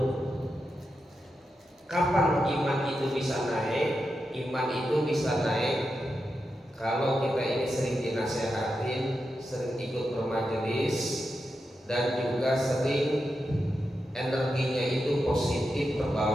Kapan iman itu bisa naik? Iman itu bisa naik kalau kita ini sering dinasehatin, sering ikut bermajelis, dan juga sering energinya itu positif,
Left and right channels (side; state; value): both; normal; correlation 0.88